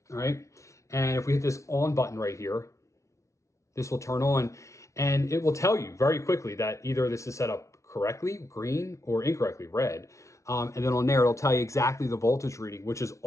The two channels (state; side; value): late; right; 0.14 ms